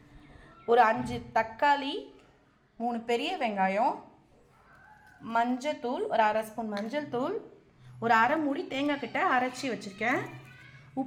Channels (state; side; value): identical; both; correlation 1.00